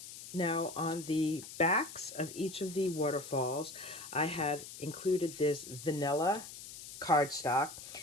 Now on the backs of each of the waterfalls, I have included this vanilla cardstock,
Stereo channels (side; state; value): left; noise; hiss, 13 dB below the sound